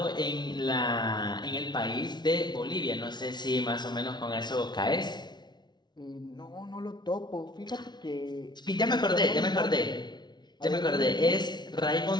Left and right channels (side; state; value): right; late; 0.20 ms